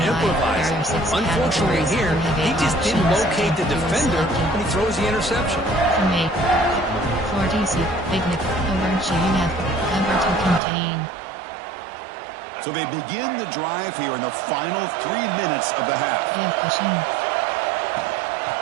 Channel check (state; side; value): drops out; left; at 10.6 s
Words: improvise. Unfortunately here, he just didn't locate the defender when he throws the interception. 40C, Picnic, over GF, cover to contain. So they begin the drive here in the final 3 minutes of the half.